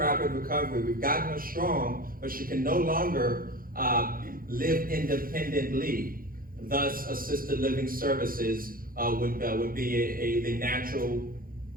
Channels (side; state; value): left; late; 0.42 ms